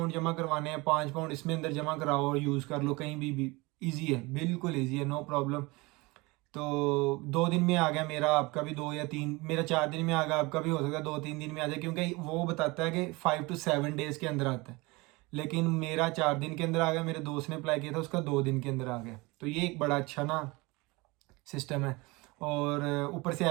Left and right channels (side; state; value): left; quieter; 24.1 dB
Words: जमा करवाने हैं, 5 पाउंड इसमें अंदर जमा कराओ और यूज़ कर लो कहीं भी ईजी है, बिल्कुल ईजी है, नो प्रॉब्लम। तो 2 दिन में आ गया मेरा, आपका भी 2 या 3, मेरा 4 दिन में आ गया, आपका भी हो सकता है 2-3 दिन में आ जाए, क्योंकि वो बताता है कि 5 to 7 डेज़ के अंदर आता है। लेकिन मेरा 4 दिन के अंदर आ गया, मेरे दोस्त ने अप्लाई किया था उसका 2 दिन के अंदर आ गया। तो ये एक बड़ा अच्छा ना सिस्टम है। और ऊपर से